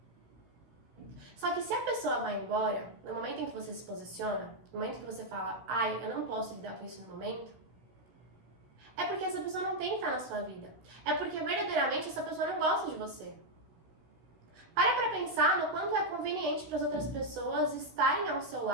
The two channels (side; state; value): left; late; 16 ms